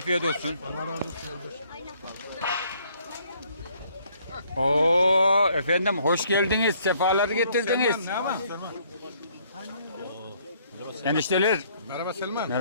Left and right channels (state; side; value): inverted; both; correlation -0.64